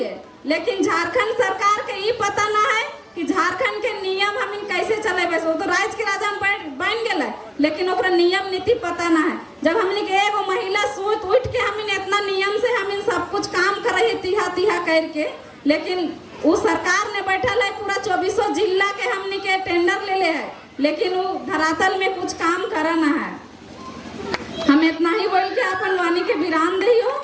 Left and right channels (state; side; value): identical; both; correlation 1.00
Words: लेकिन झारखंड सरकार के ये पता ना है कि झारखंड के नियम हम कैसे चलेबे वो तो राज्य के राजा बन गए लेकिन ओकरा नियम नीति पता ना है जब हमने के एगो महिला सूत उठ के हम इतना नियम से हम सब कुछ काम करे तिहा करके लेकिन वो सरकार ने बैठल है पूरा 24 जिला के हमने के टेंडर ले है लेकिन वो धरातल में कुछ काम करना है हम इतना ही बोल के अपन वाणी के विराम दियो